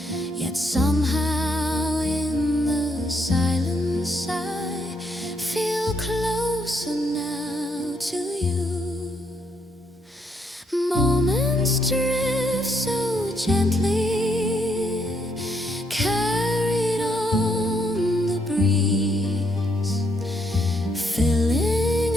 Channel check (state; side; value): normal; both; correlation 0.74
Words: yet somehow in the silence I feel closer now to you. Moments drift so gently, carried on the breeze, filling